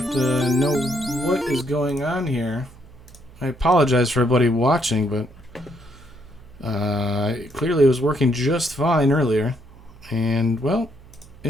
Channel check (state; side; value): noise; right; hum, 22 dB below the sound